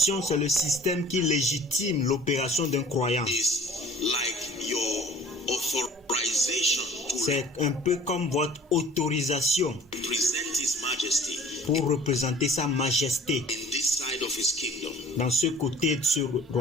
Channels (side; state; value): both; normal; correlation 0.48